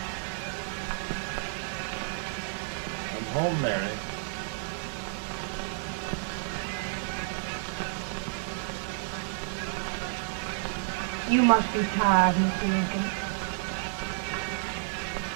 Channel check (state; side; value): silent; left; 57 dB below the other